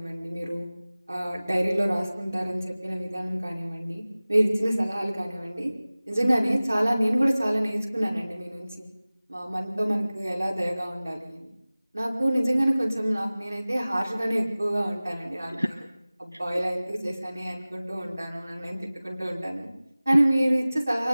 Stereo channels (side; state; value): both; inverted; correlation -0.98